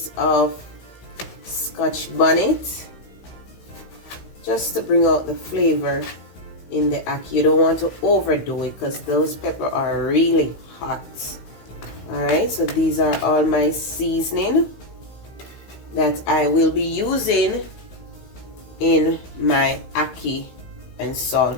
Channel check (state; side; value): late; right; 16 ms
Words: of scotch bonnet just to bring out the flavor in the ackee. You don't want to overdo it because those peppers are really hot. Alright, so these are all my seasoning that I will be using in my ackee and